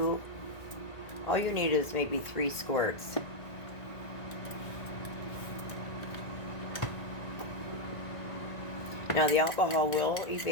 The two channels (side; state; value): right; late; 1.5 ms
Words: All you need is maybe 3 squirts. Now the alcohol will